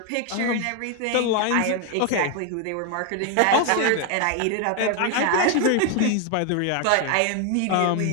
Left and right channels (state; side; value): different; both; correlation 0.01